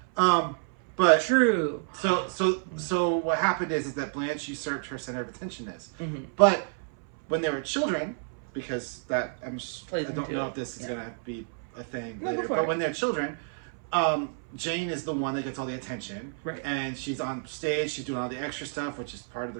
But true. So what happened is that Blanche usurped her center of attentionness. Mm-hmm. But when they were children, because I don't know if this is gonna be a thing later. But when they're children, Jane is the one that gets all the attention, right? And she's on stage, she's doing all the extra stuff, which is part of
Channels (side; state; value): left; silent; 58 dB below the other